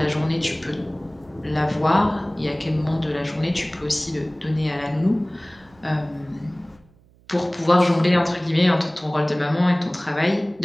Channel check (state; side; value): noise; right; hum, 30 dB below the sound